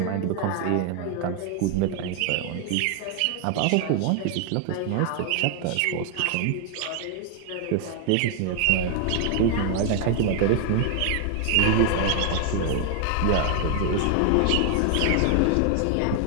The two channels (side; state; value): both; different; correlation 0.00